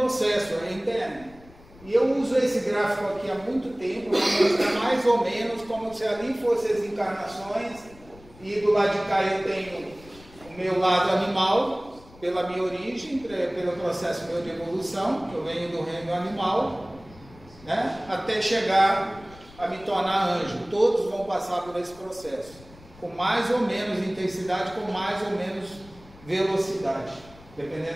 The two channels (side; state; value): left; noise; rumble, 22 dB below the sound